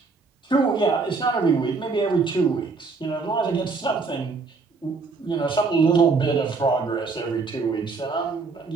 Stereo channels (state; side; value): quieter; left; 4.4 dB